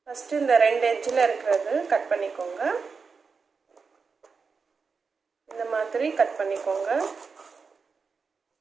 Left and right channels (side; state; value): left; quieter; 5.1 dB